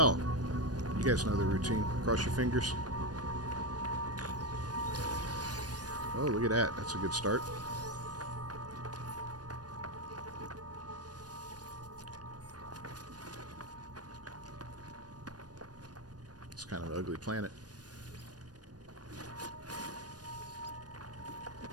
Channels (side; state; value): left; late; 0.69 ms